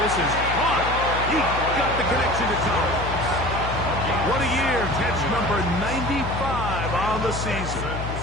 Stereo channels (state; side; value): noise; left; hum, 6 dB below the sound